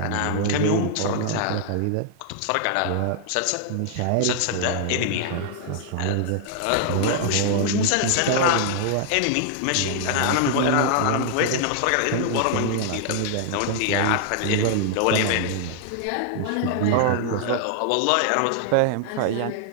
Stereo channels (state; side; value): different; both; correlation -0.01